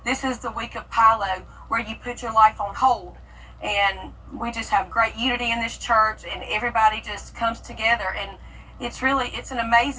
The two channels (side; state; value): both; identical; correlation 1.00